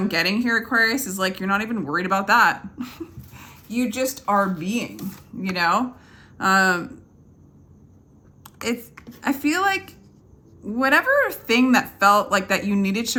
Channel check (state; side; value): identical; both; correlation 1.00